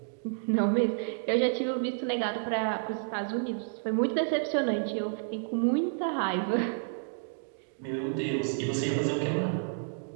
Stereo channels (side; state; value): left; silent; digital silence